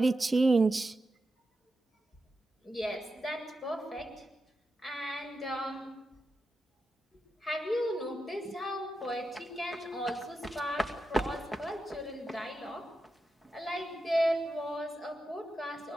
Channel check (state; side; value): normal; both; correlation 0.89